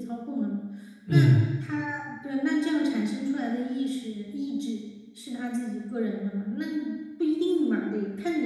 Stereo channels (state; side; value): identical; both; correlation 1.00